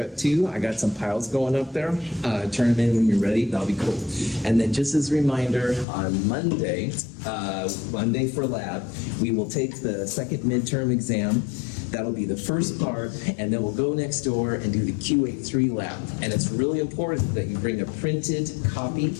2. I got some piles going up there. Turn them in when you're ready. That'll be cool. And then just as a reminder, on Monday for lab, we will take the second midterm exam. That'll be the first part, and then we'll go next door and do the QA3 lab. And it's really important that you bring a printed copy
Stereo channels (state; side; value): drops out; right; at 5.9 s